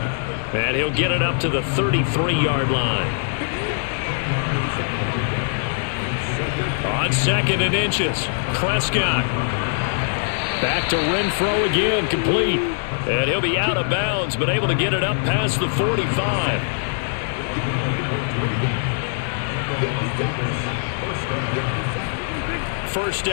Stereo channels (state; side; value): silent; right; 64 dB below the other